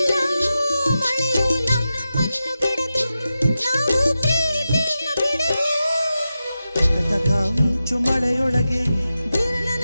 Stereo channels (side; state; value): both; inverted; correlation -0.92